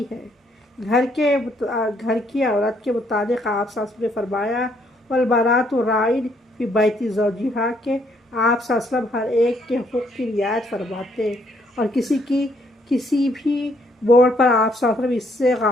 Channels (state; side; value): normal; both; correlation 0.69